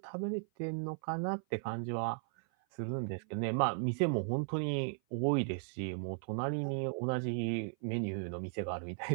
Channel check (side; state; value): left; silent; 54 dB below the other